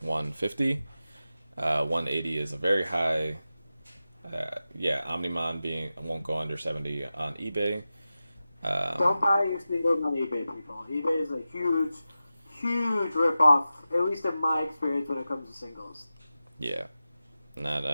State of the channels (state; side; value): inverted; both; correlation -0.93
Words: 150. 180 is a very high. Omnimon won't go under 70 on eBay. Don't buy your singles on eBay, people. eBay is a huge ripoff, at least in my experience when it comes to singles. Yeah, not